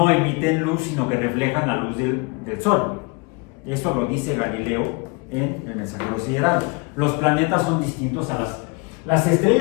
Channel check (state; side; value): quieter; right; 29.5 dB